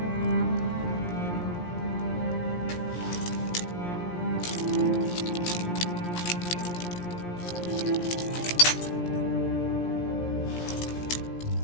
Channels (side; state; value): right; late; 17 ms